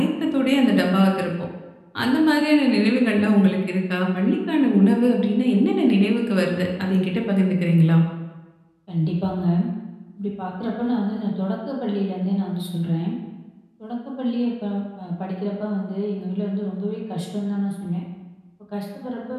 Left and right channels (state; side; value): identical; both; correlation 1.00